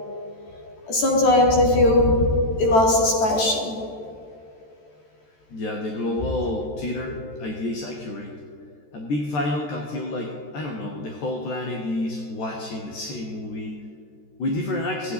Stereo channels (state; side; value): late; right; 14 ms